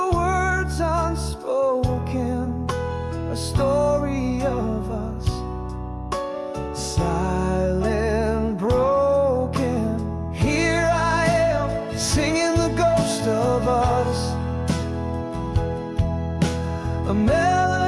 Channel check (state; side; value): identical; both; correlation 1.00